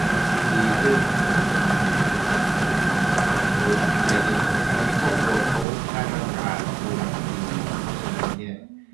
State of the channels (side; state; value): left; drops out; at 5.7 s